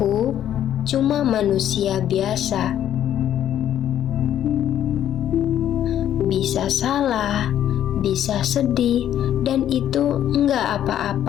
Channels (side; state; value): right; quieter; 10.9 dB